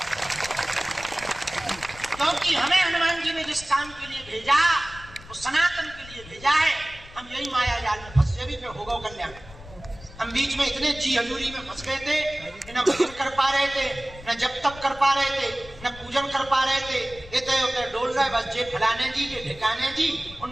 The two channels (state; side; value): noise; left; rumble, 18 dB below the sound